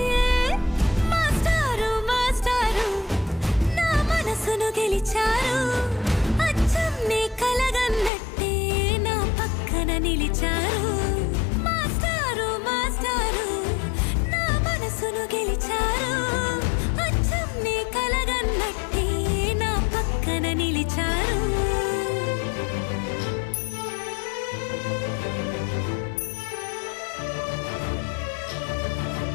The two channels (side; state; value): right; drops out; at 8.1 s